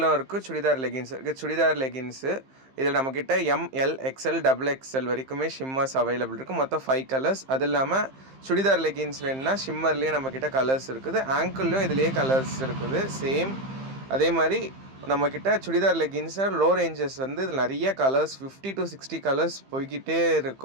இருக்குது, சுடிதார் லெகின்ஸ் இருக்குது. சுடிதார் லெகின்ஸு இதில் நம்மக்கிட்ட எம்எல் எக்ஸ்எல் டபுள் எக்ஸ்எல் வரைக்குமே ஷிம்மர்ஸ் அவைலபிள் இருக்குது. மொத்தம் 5 கலர்ஸ். அது இல்லாமல் சுடிதார் லெகின்ஸ் வேணுன்னா ஷிம்மர்லேயே நம்மக்கிட்ட கலர்ஸ் இருக்குது, ஆங்கிள்லேயும் இதுலேயே கலர்ஸ் இருக்குது சேம். அதே மாதிரி நம்மக்கிட்ட சுடிதார் லெகின்ஸை லோ ரேஞ்சஸ் வந்து இதில் நிறைய கலர்ஸ் 50 to 60 கலர்ஸ் போய்கிட்டே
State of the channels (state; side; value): late; left; 15 ms